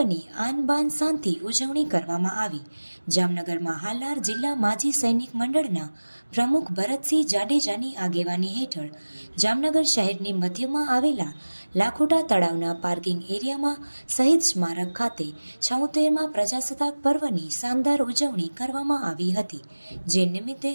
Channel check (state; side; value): inverted; both; correlation -1.00